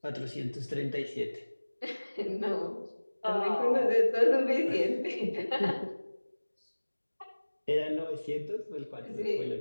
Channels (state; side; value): inverted; both; correlation -1.00